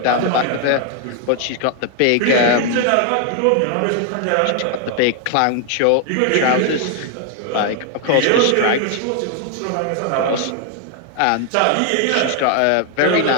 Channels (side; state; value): both; different; correlation 0.00